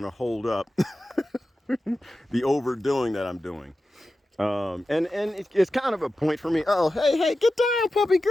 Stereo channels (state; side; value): normal; both; correlation 0.93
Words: to hold up the overdoing that I'm doing. And it's kind of a point for me. Oh, hey, get down, puppy